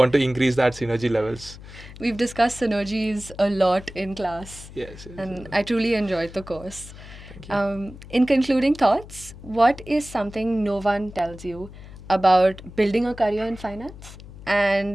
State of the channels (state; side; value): noise; left; hum, 16 dB below the sound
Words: to increase that synergy levels? We've discussed synergies a lot in class. Yes. And I truly enjoyed the course. Thank you. In concluding thoughts, what is something no one tells you about building a career in finance?